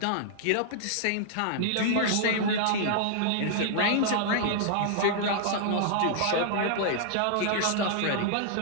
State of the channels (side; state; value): both; different; correlation -0.01